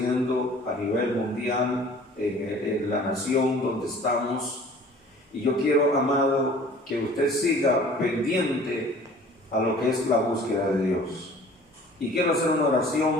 a nivel mundial, en la nación donde estamos. Y yo quiero, amado, que usted siga pendiente a lo que es la búsqueda de Dios. Y quiero hacer una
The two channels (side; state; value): both; normal; correlation 0.49